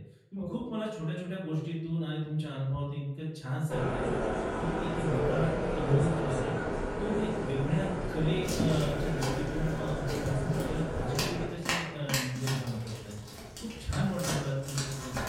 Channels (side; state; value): both; identical; correlation 1.00